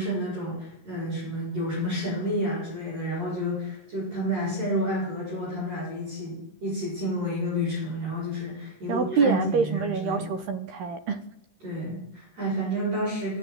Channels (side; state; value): left; late; 13 ms